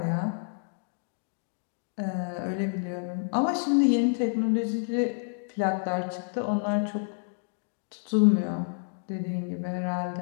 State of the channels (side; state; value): right; silent; digital silence